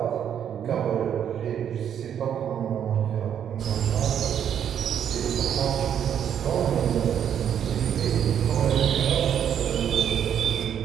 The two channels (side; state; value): left; quieter; 9.1 dB